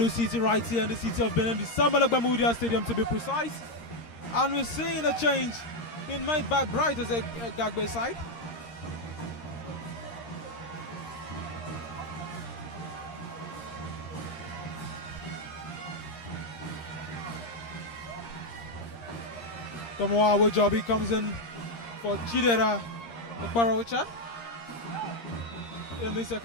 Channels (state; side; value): late; right; 13 ms